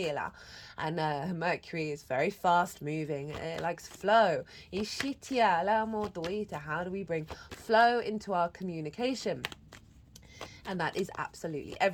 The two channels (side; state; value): both; identical; correlation 1.00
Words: And Mercury is very fast moving. It likes flow. How do we bring flow into our communication? And that is absolutely